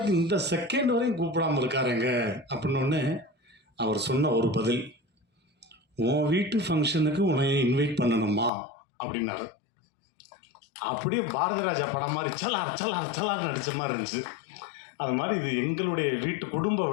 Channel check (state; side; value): drops out; right; at 8.5 s